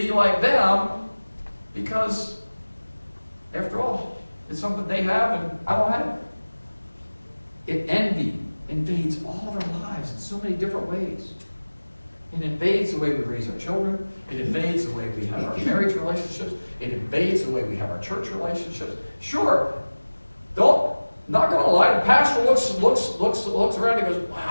like them because, after all, it's something they have and I don't have it. Envy invades all of our lives in so many different ways. It invades the way we raise our children. It invades the way we have our marriage relationships. It invades the way we have our church relationships. Sure, not going to lie, the pastor looks around and goes,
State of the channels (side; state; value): both; inverted; correlation -1.00